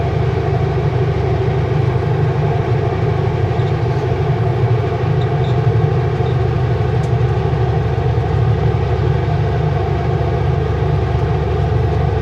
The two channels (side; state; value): both; identical; correlation 1.00